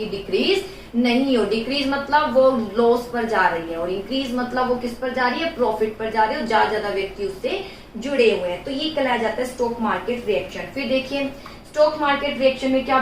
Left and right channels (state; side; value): identical; both; correlation 1.00